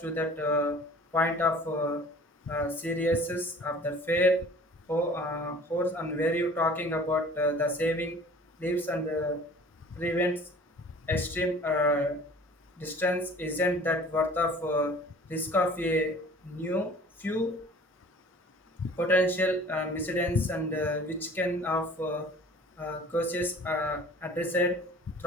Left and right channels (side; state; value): both; normal; correlation 0.47